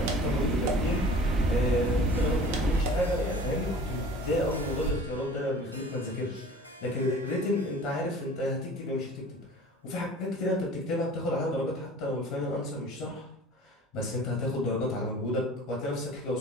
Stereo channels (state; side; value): normal; both; correlation 0.44